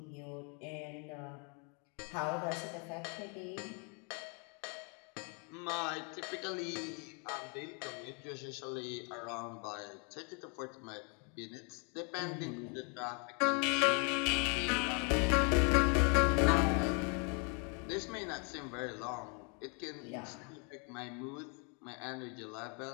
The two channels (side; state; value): right; quieter; 36.7 dB